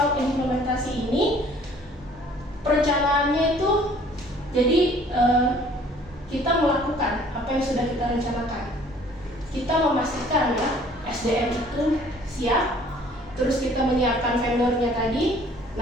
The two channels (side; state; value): both; normal; correlation 0.55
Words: implementasi ini perencanaannya itu jadi kita melakukan apa yang sudah kita rencanakan. Kita memastikan ya SDM itu siap, terus kita menyiapkan vendornya tadi.